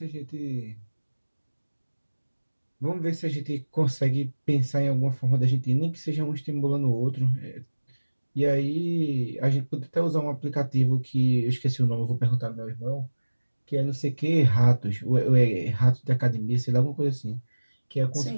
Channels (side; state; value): both; inverted; correlation -1.00